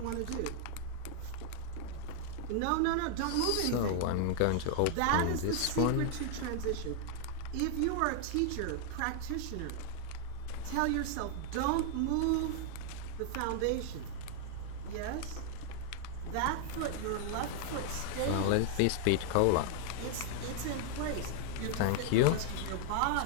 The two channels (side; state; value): both; different; correlation 0.00